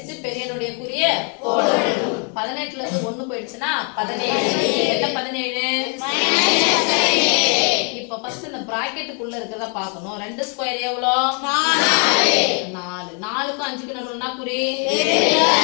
பெரிய எண்ணுடைய குறிய போடணும். 18ல இருந்து 1 போயிடுச்சுனா 17. என்ன 17 இப்போ ஃபர்ஸ்ட் இந்த பிராக்கெட்டுக்குள்ள இருக்கறத பார்க்கணும். 2 ஸ்கொயர் எவ்வளோ 4. 4க்கு 5க்கு நடுவுல குறி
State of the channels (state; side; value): quieter; right; 38.9 dB